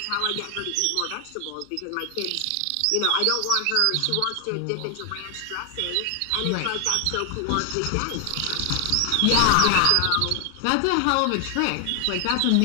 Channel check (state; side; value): different; both; correlation 0.00